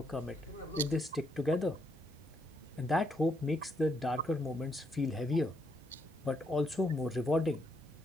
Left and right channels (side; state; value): both; normal; correlation 0.76